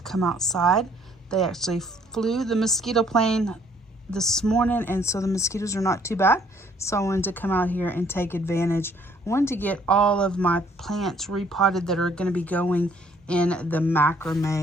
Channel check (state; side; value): normal; both; correlation 0.63